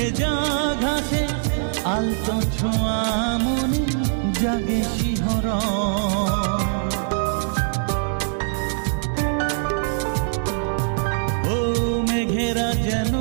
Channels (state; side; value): silent; left; digital silence